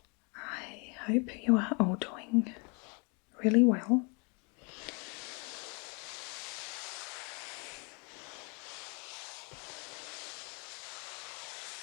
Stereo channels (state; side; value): quieter; right; 33.9 dB